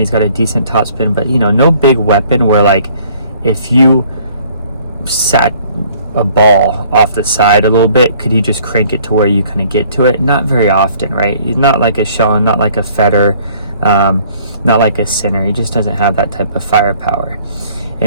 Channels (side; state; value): both; inverted; correlation -0.57